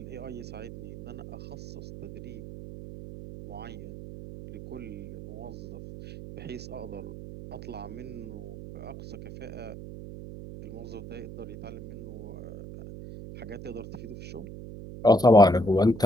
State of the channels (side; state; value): right; noise; hum, 11 dB below the sound